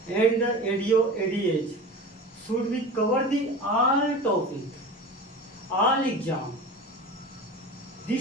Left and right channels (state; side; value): normal; both; correlation 0.33